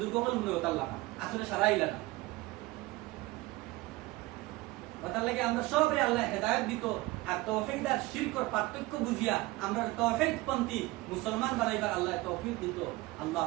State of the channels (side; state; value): left; quieter; 20.2 dB